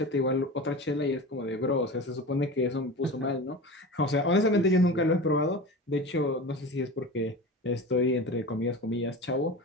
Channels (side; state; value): both; normal; correlation 0.31